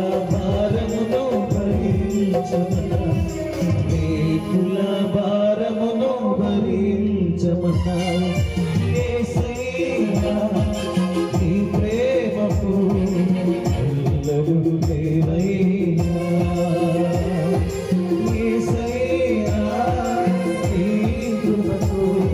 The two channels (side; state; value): both; identical; correlation 1.00